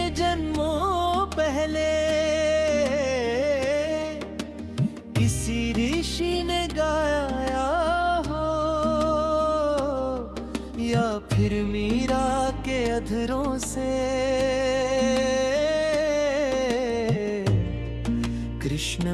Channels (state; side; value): identical; both; correlation 1.00